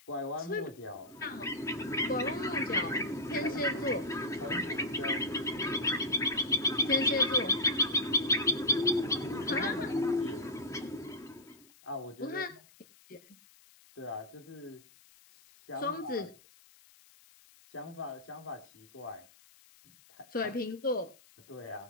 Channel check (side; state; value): left; noise; hiss, 26 dB below the sound